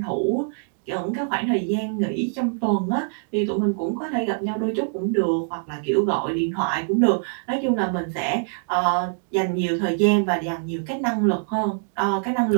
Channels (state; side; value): silent; left; digital silence